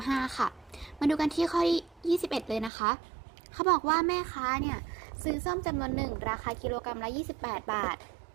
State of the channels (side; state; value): left; drops out; at 2.7 s